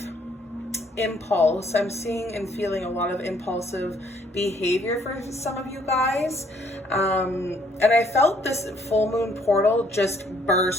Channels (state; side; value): normal; both; correlation 0.65